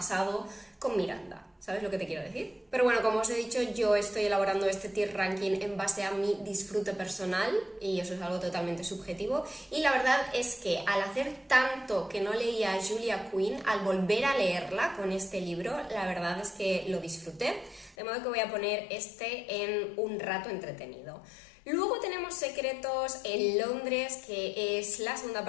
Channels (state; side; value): drops out; right; at 17.9 s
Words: con Miranda. ¿Sabes lo que te quiero decir? Pero bueno, como os he dicho, yo estoy elaborando este tier ranking en base a mi disfrute personal y eso es algo totalmente subjetivo. Y la verdad es que al hacer tanto que no leía a Julia Quinn, al volver a leerla con este libro, la verdad es que lo disfruté. De modo que voy a poner este en un rato entretenido. Luego tenemos Secretos en Londres, que es la segunda